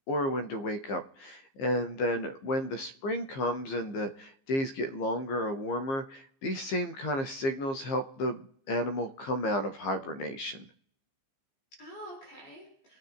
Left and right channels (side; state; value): right; late; 15 ms